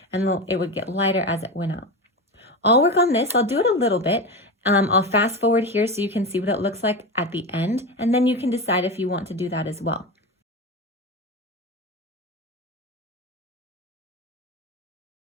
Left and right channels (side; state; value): both; normal; correlation 0.21